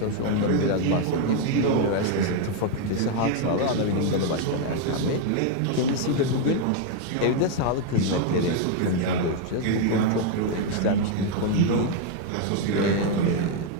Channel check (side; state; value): both; different; correlation 0.01